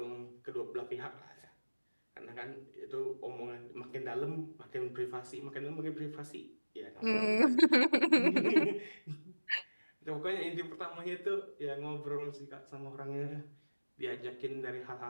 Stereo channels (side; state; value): both; inverted; correlation -1.00